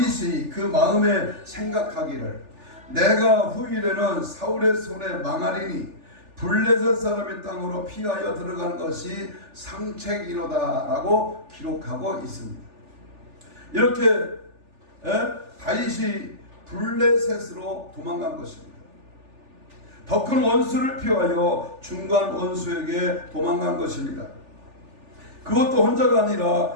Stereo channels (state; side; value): late; left; 3.4 ms